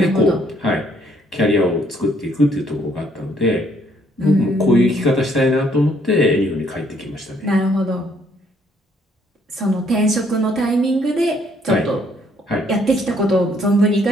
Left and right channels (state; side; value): normal; both; correlation 0.67